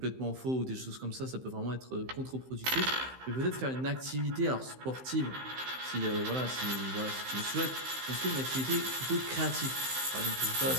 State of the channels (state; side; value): late; left; 15 ms